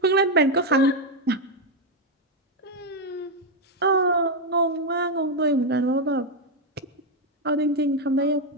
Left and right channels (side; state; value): both; normal; correlation 0.04